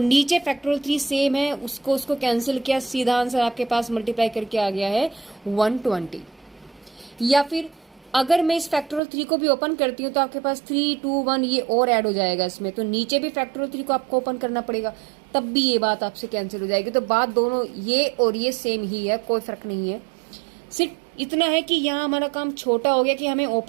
नीचे फैक्टोरियल 3 सेम है उसको कैंसिल किया, सीधा आंसर आपके पास मल्टीप्लाई करके आ गया है 120। या फिर अगर मैं इस फैक्टोरियल 3 को भी ओपन करती हूँ तो आपके पास 3, 2, 1 ये और ऐड हो जाएगा इसमें, तो नीचे भी फैक्टोरियल 3 को आपको ओपन करना पड़ेगा, तब भी ये बात आपसे कैंसिल हो जाएगी। तो बात दोनों ये और ये सेम ही है, कोई फर्क नहीं है। सिर्फ इतना है कि यहाँ हमारा काम छोटा हो गया कि हमें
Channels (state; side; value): drops out; left; at 9.0 s